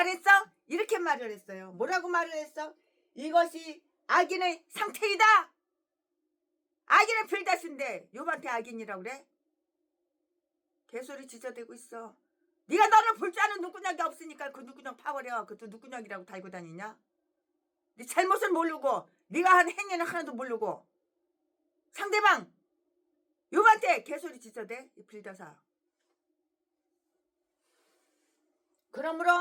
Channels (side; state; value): both; identical; correlation 1.00